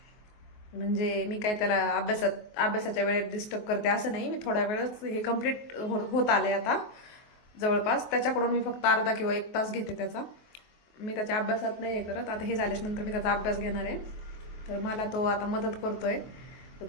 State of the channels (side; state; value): right; late; 23 ms